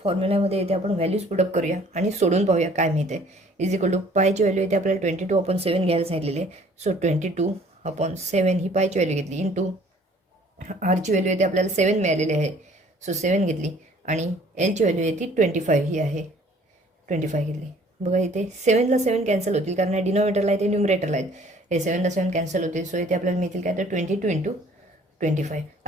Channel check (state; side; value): normal; both; correlation 0.56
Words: फॉर्म्युल्यामध्ये इथे आपण व्हॅल्यूज पुटअप करूया आणि सोडून पाहूया काय मिळते. इज इक्वल टू पायची व्हॅल्यू इथे आपल्याला 22/7 घ्यायला सांगितलेली आहे. सो 22/7 ही पायची व्हॅल्यू घेतली इंटू आरची व्हॅल्यू इथे आपल्याला 7 मिळालेली आहे. सो 7 घेतली आणि एलची व्हॅल्यू आहे ती 25 ही आहे. 25 घेतली. बघा इथे 7ला 7 कॅन्सल होतील कारण डिनोमिनेटरला आहे ते न्युमरेटरला आहेत. हे 7ला 7 कॅन्सल होतील. सो इथे आपल्याला मिळतील काय तर 22 × 25.